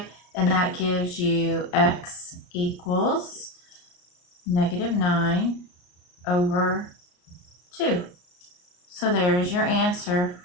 and that gives you x equals negative 9 over 2. So there is your answer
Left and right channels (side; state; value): right; late; 34 ms